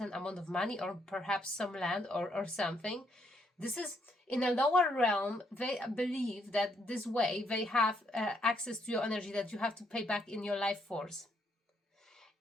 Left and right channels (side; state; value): both; normal; correlation 0.74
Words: amount of money or perhaps some land or something. This is in a lower realm. They believe that this way they have access to your energy that you have to pay back in your life force.